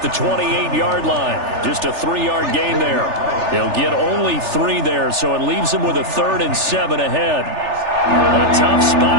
28-yard line. Just a 3-yard gain there. He'll get only 3 there, so it leaves him with a 3rd and 7 ahead. A tough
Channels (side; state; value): left; late; 3.4 ms